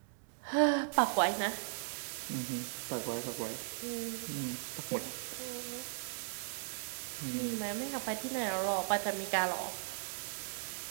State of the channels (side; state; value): left; silent; digital silence